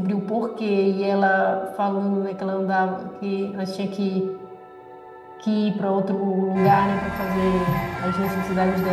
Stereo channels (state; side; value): identical; both; correlation 1.00